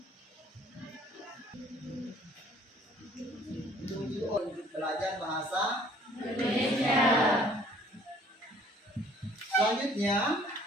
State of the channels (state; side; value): normal; both; correlation 0.56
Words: Tujuh untuk belajar bahasa Indonesia. Selanjutnya,